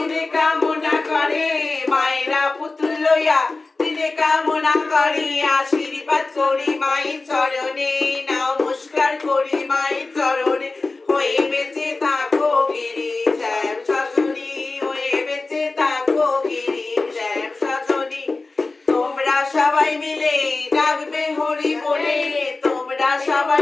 কামনা করে মায়েরা পুতুল লইয়া দিনে কামনা করে আশীর্বাদ করি মায়ের চরণে নমস্কার করি মায়ের চরণে হয়ে বেঁচে থাকো গিরি শ্যাম সজনী হয়ে বেঁচে থাকো গিরি শ্যাম সজনী তোমরা সবাই মিলে ডাকবে হরি বলে তোমরা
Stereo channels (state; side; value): quieter; right; 3.5 dB